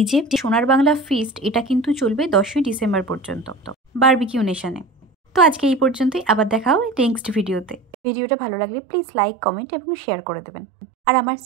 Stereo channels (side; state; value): left; drops out; at 7.8 s